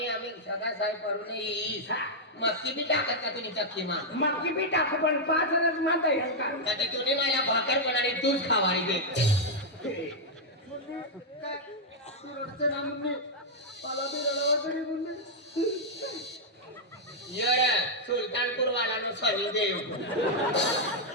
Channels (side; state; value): both; normal; correlation -0.04